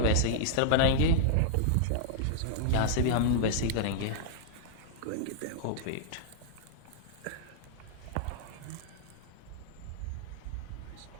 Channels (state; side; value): different; both; correlation -0.02